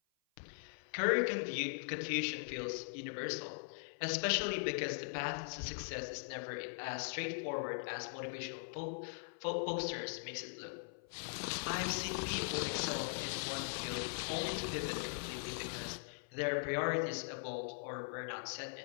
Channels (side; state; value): right; silent; 51 dB below the other